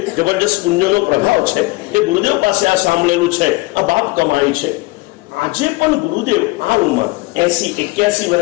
જબરદસ્ત પુણ્યનો પ્રભાવ છે. એ ગુરુદેવ પાસે આ સાંભળેલું છે, આ બાપ કમાઈ છે. આજે પણ ગુરુદેવ આ ઉંમર 80-81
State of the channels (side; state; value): right; quieter; 22.8 dB